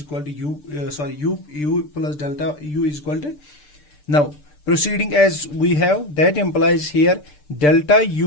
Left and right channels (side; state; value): right; late; 6.8 ms